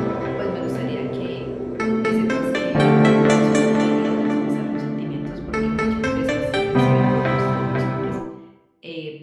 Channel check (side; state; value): both; identical; correlation 1.00